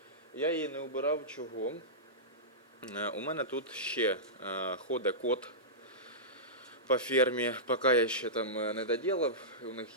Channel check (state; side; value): normal; both; correlation -0.16